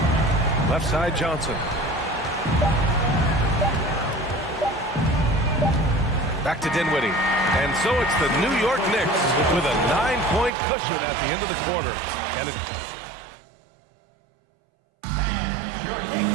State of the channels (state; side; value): drops out; left; at 10.5 s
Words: Left side, Johnson. Back to Dinwiddie. And so it's the New York Knicks with a 9-point cushion at the end of the quarter. And it...